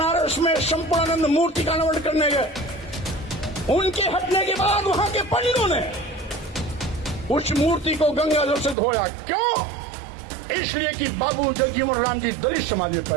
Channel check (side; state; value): left; drops out; at 8.8 s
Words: में संपूर्णानंद मूर्ति का अनावरण करने गए। उनके हटने के बाद वहां के पंडितों ने उस मूर्ति को गंगा जल से धोया। क्यों? इसलिए कि बाबू जगजीवन राम जी दलित समाज में